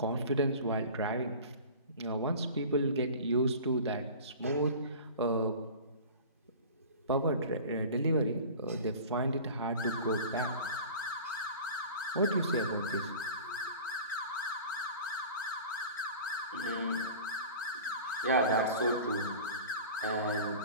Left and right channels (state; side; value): inverted; both; correlation -0.38